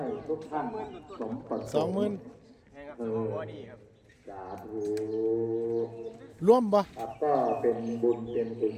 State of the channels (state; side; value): identical; both; correlation 1.00